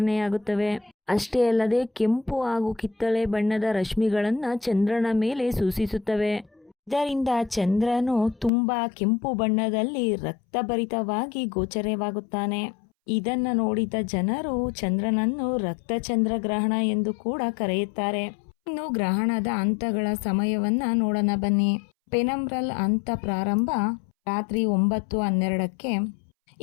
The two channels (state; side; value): drops out; right; at 8.5 s